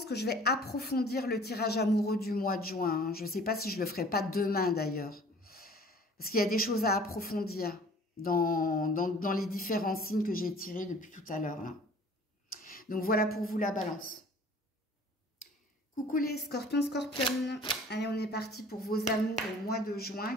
que je vais approfondir le tirage amoureux du mois de juin. Hein. Je ne sais pas si je le ferai pas demain d'ailleurs. Parce qu'il y a des choses à approfondir dans les différents signes que j'ai tirés depuis tout à l'heure. Là. Donc voilà pour vous la balance. Coucou les scorpions, scorpionnes. Allez, on est parti pour vos amours au mois de juin.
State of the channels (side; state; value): both; normal; correlation 0.49